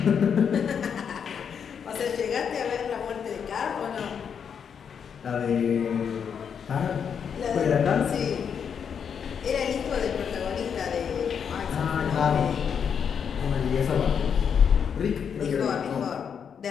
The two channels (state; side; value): quieter; right; 7.3 dB